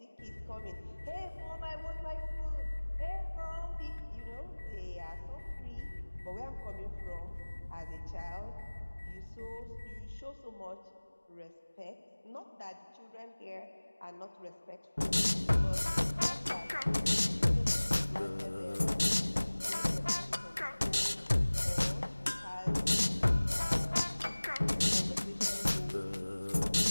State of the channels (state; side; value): inverted; both; correlation -1.00